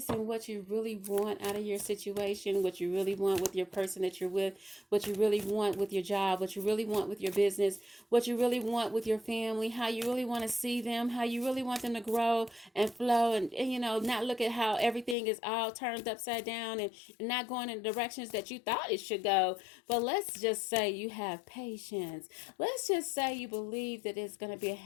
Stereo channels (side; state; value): right; drops out; at 15.2 s